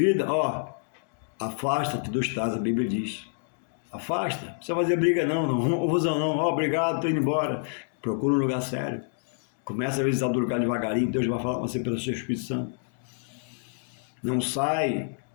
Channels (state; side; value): silent; right; digital silence